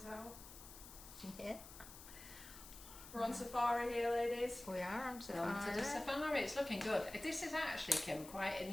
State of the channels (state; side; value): noise; left; hiss, 15 dB below the sound